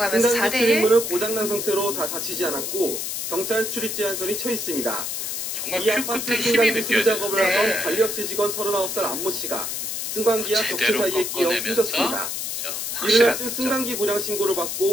승강기 4대1. 출입문은 고장난 상태로 다 닫히지 않았고 경찰 출입 제한선이 쳐 있습니다. 정말 이 큐 아파트 끝에 힘이 승강기 수리 느껴져요. 작업을 네. 하던 관리업체 직원 39살 안모 씨가 승강기와 벽체 제대로 사이에 끼어 꺾어내면서 숨졌습니다. 이른 확실한 아침 득점. 승강기 고장 신고를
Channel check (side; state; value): left; noise; hiss, 3 dB below the sound